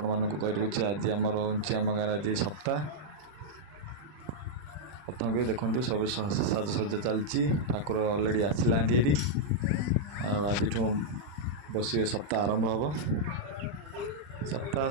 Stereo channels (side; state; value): left; late; 40 ms